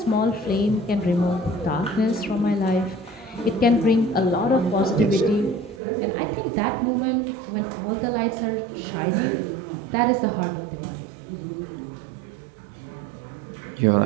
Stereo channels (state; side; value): drops out; left; at 5.8 s